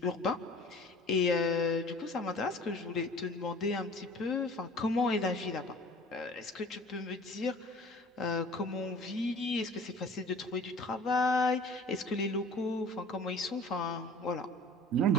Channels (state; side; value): normal; both; correlation 0.46